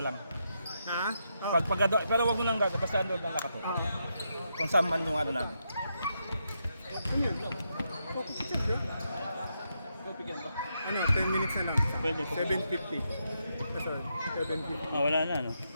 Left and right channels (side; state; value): both; inverted; correlation -0.82